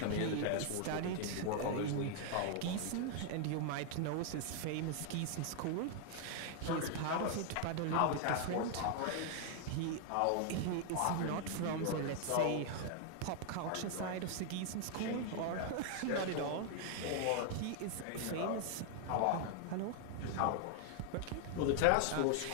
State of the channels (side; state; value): both; different; correlation 0.00